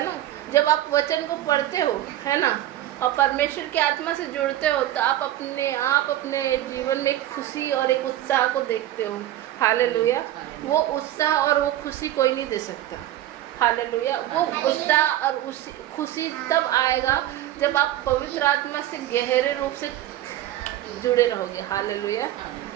ना। जब आप वचन को पढ़ते हो, है ना, और परमेश्वर की आत्मा से जुड़ते हो, तो आप अपने जीवन में एक खुशी और एक उत्साह को देखते हो। हालेलुया। वो उत्साह और वो खुशी कोई नहीं दे सकता। हालेलुया। वो उत्साह और खुशी तब आएगा जब आप पवित्र आत्मा से गहरे रूप से जुड़े रहोगे। हालेलुया।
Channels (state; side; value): quieter; left; 13.6 dB